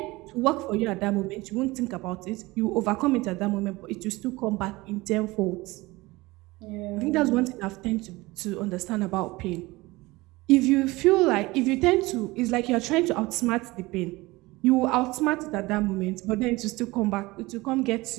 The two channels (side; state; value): left; quieter; 21.2 dB